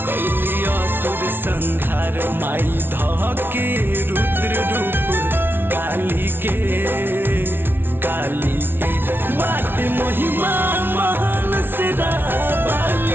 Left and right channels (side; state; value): left; late; 0.11 ms